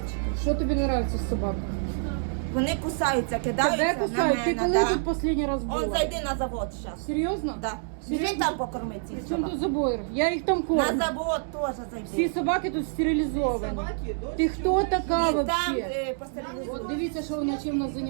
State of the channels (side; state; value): left; silent; digital silence